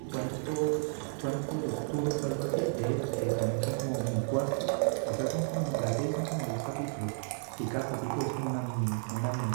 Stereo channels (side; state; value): left; silent; 56 dB below the other